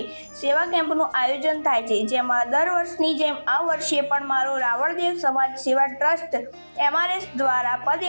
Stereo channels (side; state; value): both; inverted; correlation -1.00